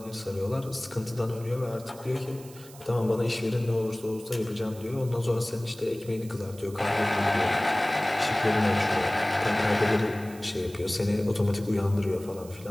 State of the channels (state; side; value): noise; right; hiss, 20 dB below the sound